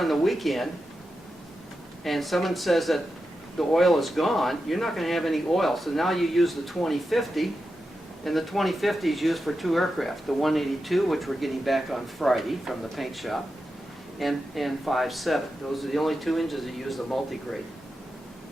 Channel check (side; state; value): both; normal; correlation 0.89